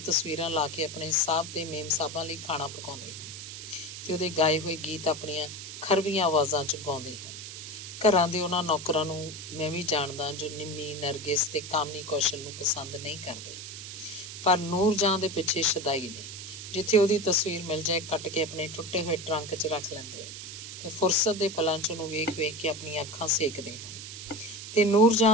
ਤਸਵੀਰਾਂ ਲਾ ਕੇ ਆਪਣੇ ਸਾਹਬ ਤੇ ਮੇਮ ਸਾਹਿਬਾਂ ਲਈ ਖਾਣਾ ਪਕਾਉਂਦੇ ਹਨ ਤੇ ਉਹਦੇ ਗਾਏ ਹੋਏ ਗੀਤ ਆਪਣੀਆਂ ਖਰਵੀਆਂ ਆਵਾਜ਼ਾਂ 'ਚ ਗਾਉਂਦੇ ਹਨ। ਘਰਾਂ ਦੇ ਉਹਨਾਂ ਨੌਕਰਾਂ ਨੂੰ ਮੈਂ ਵੀ ਜਾਣਦਾ ਜੋ ਨਿੰਮੀ, ਨਰਗਿਸ ਤੇ ਕਾਮਨੀ ਕੌਸ਼ਲ ਨੂੰ ਪਸੰਦ ਨਹੀਂ ਕਰਦੇ, ਪਰ ਨੂਰ ਜਹਾਂ ਦੇ ਪਿੱਛੇ ਸ਼ਦਾਈ ਨੇ। ਜਿੱਥੇ ਉਹਦੀ ਤਸਵੀਰ ਮਿਲ ਜਾਏ, ਕੱਟ ਕੇ ਆਪਣੇ ਟੁੱਟੇ ਹੋਏ ਟਰੰਕ 'ਚ ਰੱਖ ਲੈਂਦੇ ਤੇ ਫੁਰਸਤ ਦੇ ਪਲਾਂ 'ਚ ਉਹਨੂੰ ਵੇਖ ਵੇਖ ਕੇ ਆਪਣੀਆਂ ਅੱਖਾਂ ਸੇਕਦੇ ਹਨ। ਤੇ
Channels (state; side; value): noise; right; hiss, 10 dB below the sound